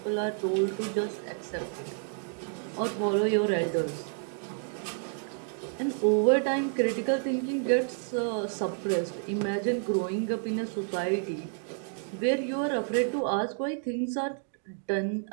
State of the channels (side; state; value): left; silent; 57 dB below the other